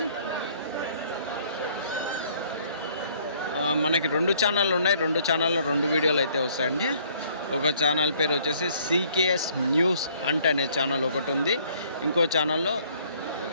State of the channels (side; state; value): both; inverted; correlation -0.61